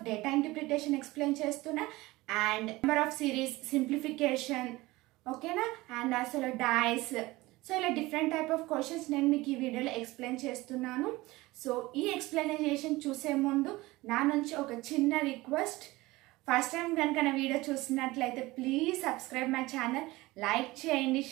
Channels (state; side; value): quieter; left; 20.1 dB